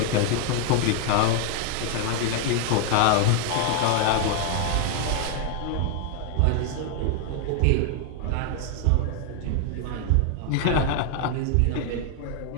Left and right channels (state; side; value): different; both; correlation 0.00